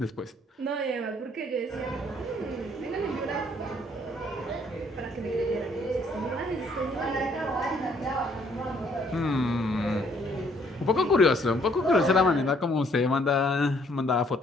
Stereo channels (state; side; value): normal; both; correlation 0.65